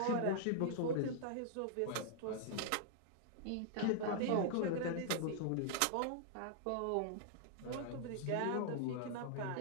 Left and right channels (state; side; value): different; both; correlation -0.01